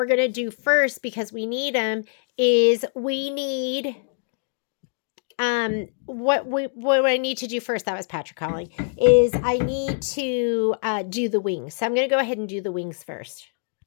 going to do first, because we need them, is we need what I need to do first, that was Patrick calling, is I need to do the wings. So I'm going to go ahead and do the wings first.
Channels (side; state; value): right; silent; digital silence